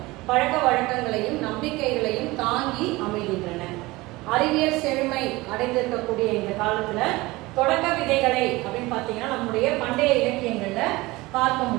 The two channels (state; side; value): quieter; left; 21.0 dB